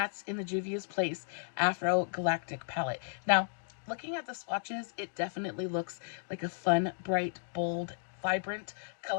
in the Juvia's Place AfroGalactic palette. Now, looking at the swatches, it definitely looks like a fun, bright, bold, vibrant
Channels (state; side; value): silent; right; digital silence